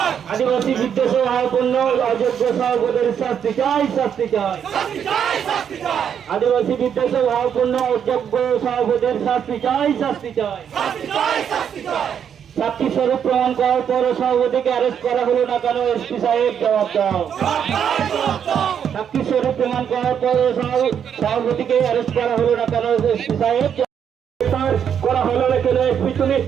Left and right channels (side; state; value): left; quieter; 8.2 dB